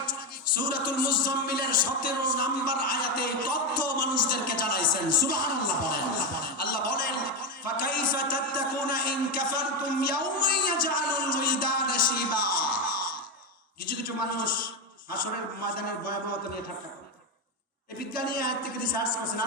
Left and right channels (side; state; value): both; normal; correlation 0.10